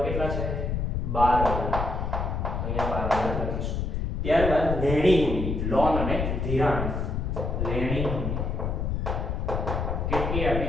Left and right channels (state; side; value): noise; left; rumble, 1 dB below the sound